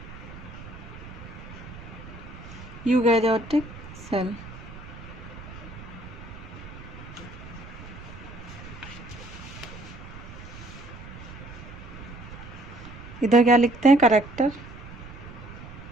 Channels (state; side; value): noise; right; rumble, 14 dB below the sound